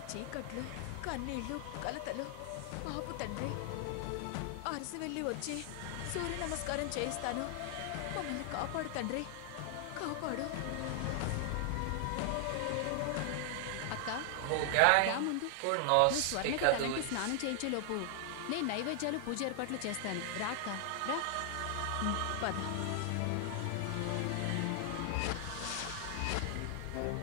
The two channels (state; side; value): different; both; correlation 0.00